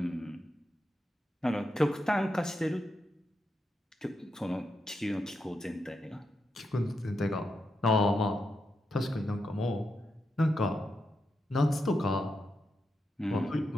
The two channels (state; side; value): normal; both; correlation 0.84